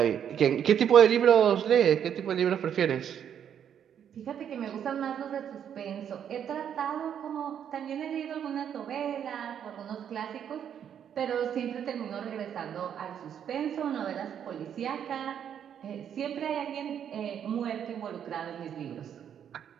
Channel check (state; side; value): quieter; left; 8.9 dB